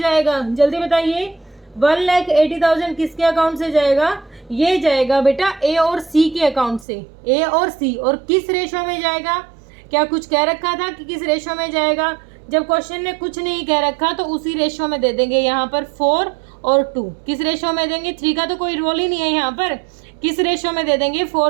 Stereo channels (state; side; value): drops out; left; at 6.9 s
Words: जल्दी बताइए, 1,80,000 किसके अकाउंट से जाएगा? ये जाएगा बेटा ए और सी के अकाउंट से। ए और सी, और किस रेशो में जाएगा? क्या कुछ कह रखा था कि किस रेशो में जाएगा? जब क्वेश्चन ने कुछ नहीं कह रखा तो उसी रेशो में दे देंगे। यहाँ पर 4 और 2 किस रेशो में देंगे? 3 का तो कोई रोल ही नहीं है यहाँ पर। किस रेशो में दे देंगे?